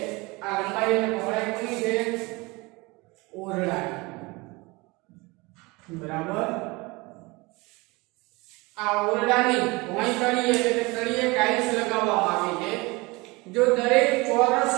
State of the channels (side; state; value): left; quieter; 24.5 dB